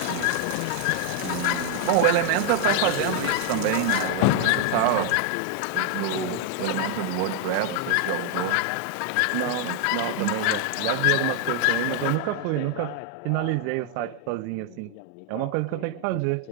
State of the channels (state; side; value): different; both; correlation 0.00